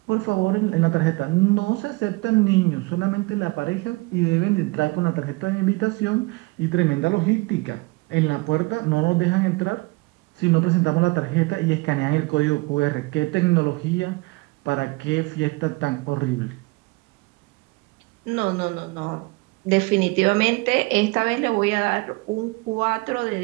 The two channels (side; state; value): left; quieter; 25.0 dB